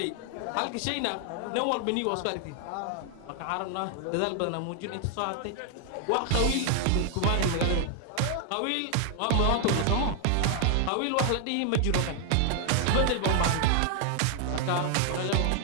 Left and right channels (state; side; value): different; both; correlation 0.00